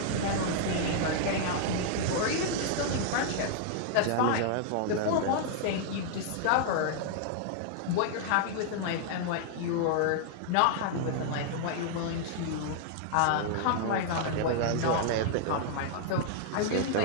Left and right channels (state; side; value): different; both; correlation 0.00